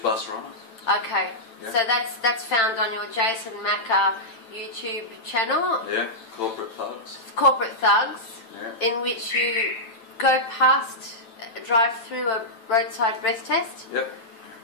runner. Okay. Yeah. So that's found on your Jason Macker YouTube channel, Yeah, corporate thugs. Corporate Thugs, Yeah. in which you go past, drive through a roadside breath test, Yep.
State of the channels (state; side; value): late; right; 9.0 ms